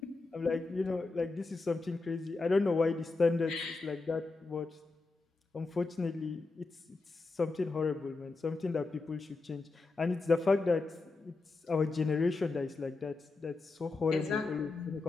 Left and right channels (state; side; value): quieter; right; 3.7 dB